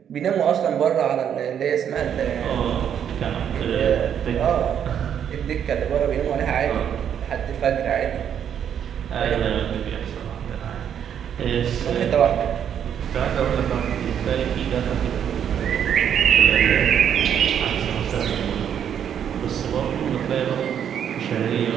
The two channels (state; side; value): quieter; left; 8.9 dB